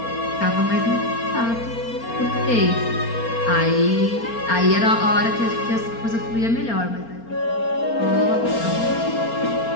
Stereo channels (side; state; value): right; late; 4.3 ms